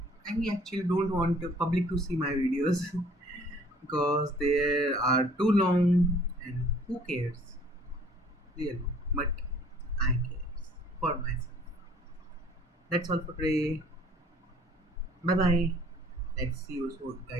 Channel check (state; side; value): normal; both; correlation 0.55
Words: I actually don't want the public to see my videos because they are too long, and who cares really? But I care for myself. That's all for today. Bye bye. Let's see you